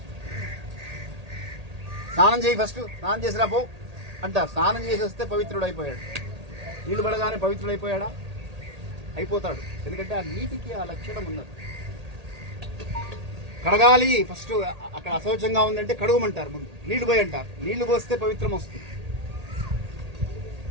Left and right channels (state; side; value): late; left; 1.8 ms